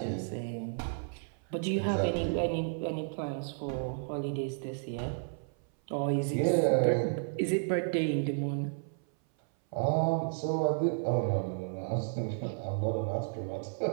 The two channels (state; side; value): silent; left; 56 dB below the other